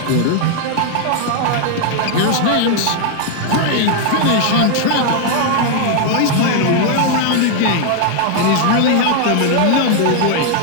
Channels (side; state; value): both; different; correlation 0.00